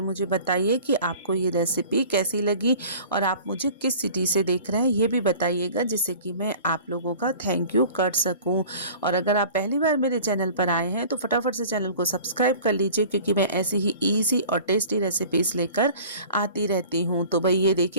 बताइए कि आपको ये रेसिपी कैसी लगी, और आप मुझे किस सिटी से देख रहे हैं ये भी बताइएगा, जिससे कि मैं आप लोगों का थैंक यू कर सकूँ। और अगर आप पहली बार बार मेरे चैनल पर आए हैं तो फटाफट से चैनल को सब्सक्राइब कर लीजिए, क्योंकि मैं ऐसी ही ईजी और टेस्टी रेसिपीज़ लेकर आती रहती हूँ। तो भाई ये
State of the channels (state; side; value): inverted; both; correlation -0.44